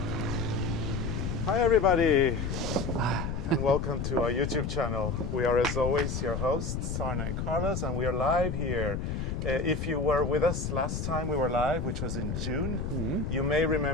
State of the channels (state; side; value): noise; left; rumble, 3 dB below the sound